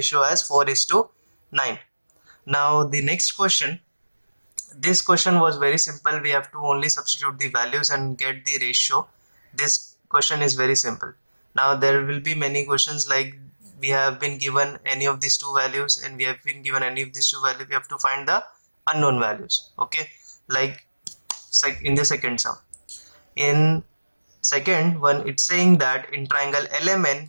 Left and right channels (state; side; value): inverted; both; correlation -1.00